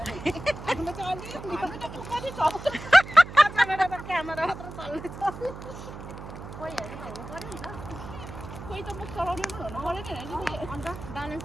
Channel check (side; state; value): right; noise; hum, 12 dB below the sound